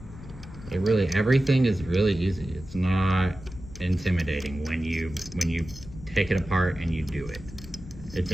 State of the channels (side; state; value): left; noise; rumble, 15 dB below the sound